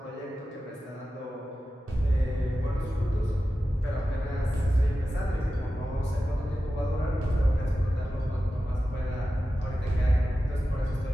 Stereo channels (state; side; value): normal; both; correlation 0.93